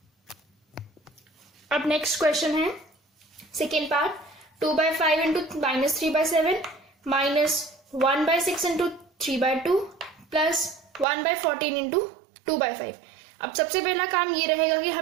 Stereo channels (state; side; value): drops out; left; at 11.1 s